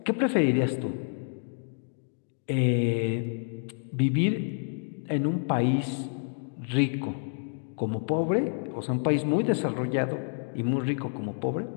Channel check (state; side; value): silent; right; digital silence